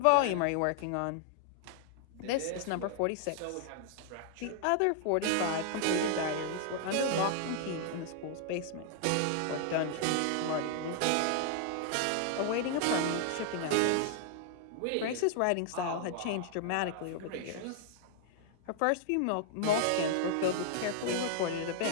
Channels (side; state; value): both; different; correlation -0.01